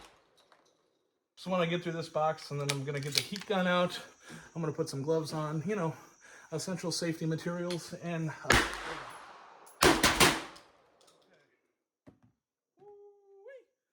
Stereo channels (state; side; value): identical; both; correlation 1.00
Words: So when I get through this box, and then I'm gonna get the heat gun out, I'm gonna put some gloves on, you know, essential safety materials, and